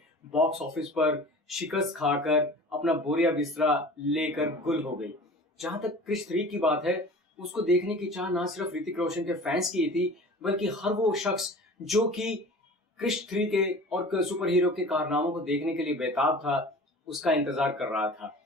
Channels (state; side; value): normal; both; correlation 0.41